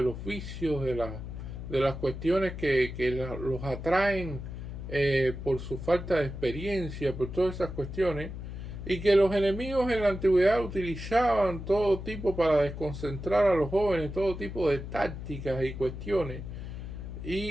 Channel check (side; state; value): left; noise; hum, 8 dB below the sound